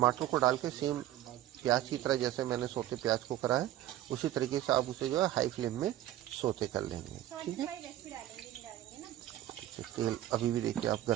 को डाल के सेम प्याज की तरह जैसे मैंने सौते प्याज को करा है उसी तरीके से आप उसे जो है हाई फ्लेम में सौते कर लेंगे। ठीक है, तेल अभी भी देखिए आप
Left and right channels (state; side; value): quieter; left; 13.4 dB